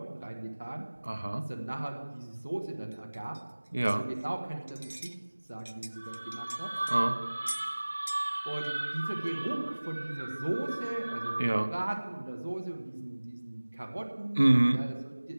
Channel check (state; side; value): inverted; both; correlation -1.00